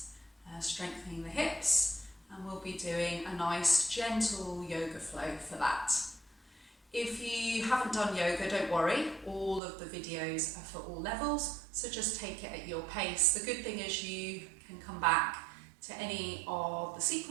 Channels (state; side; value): drops out; left; at 9.6 s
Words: strengthening the hips, and we'll be doing a nice gentle yoga flow for that. If you haven't done yoga, don't worry, all of the videos are for all levels, so just take it at your pace. The good thing is you can come back to any of the